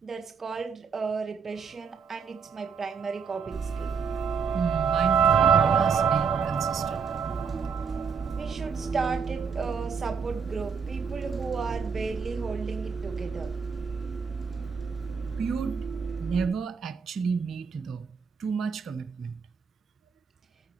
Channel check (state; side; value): quieter; left; 6.0 dB